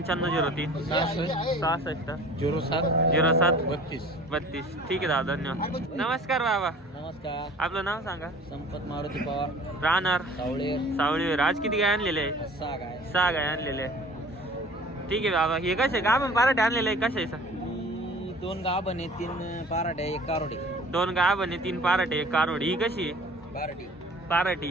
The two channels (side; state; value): both; normal; correlation 0.46